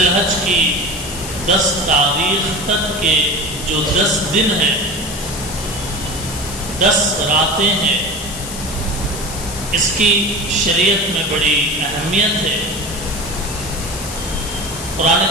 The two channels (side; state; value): left; noise; hiss, 9 dB below the sound